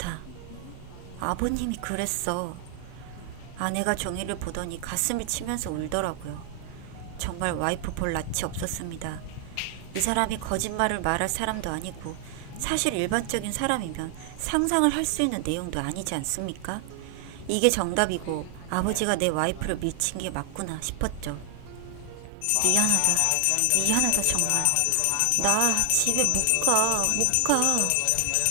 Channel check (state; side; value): different; both; correlation 0.00